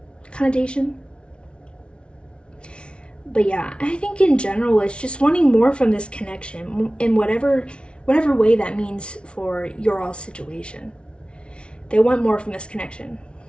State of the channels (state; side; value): late; right; 0.058 ms